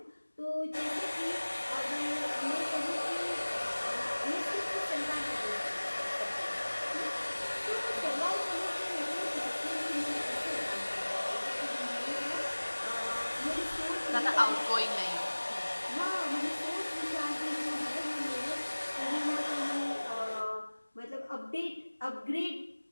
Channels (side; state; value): both; inverted; correlation -1.00